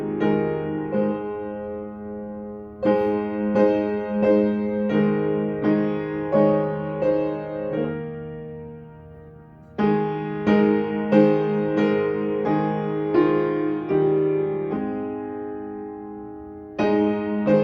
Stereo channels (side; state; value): both; identical; correlation 1.00